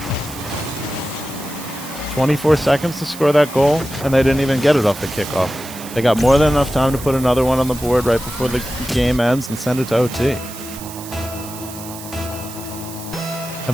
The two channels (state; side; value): noise; right; hiss, 14 dB below the sound